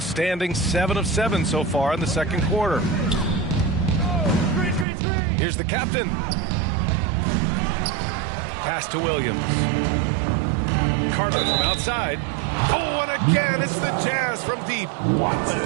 7 of 7 so far in the second quarter. Here's the captain. Pass to Williams. Carter from outside. Oh, and again, it's the Jazz from deep. The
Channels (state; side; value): drops out; left; at 4.9 s